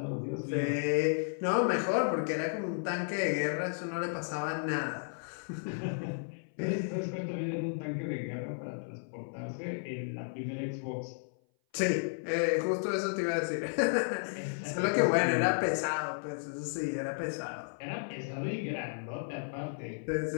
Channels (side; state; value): right; silent; 55 dB below the other